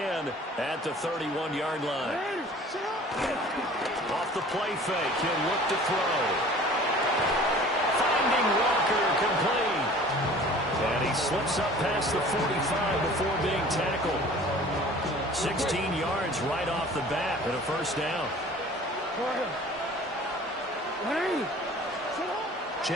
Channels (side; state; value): both; normal; correlation 0.46